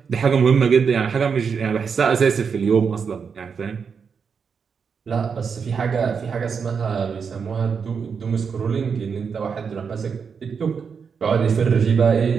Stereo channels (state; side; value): quieter; left; 6.1 dB